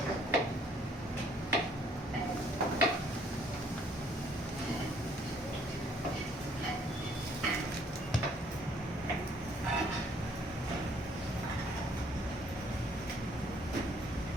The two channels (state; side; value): normal; both; correlation 0.63